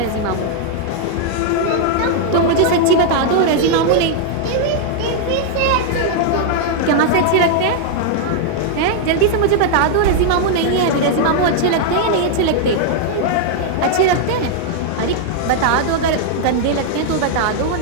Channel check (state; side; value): different; both; correlation -0.01